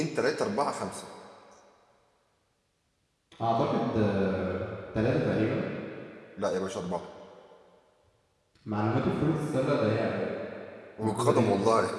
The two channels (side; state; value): both; identical; correlation 1.00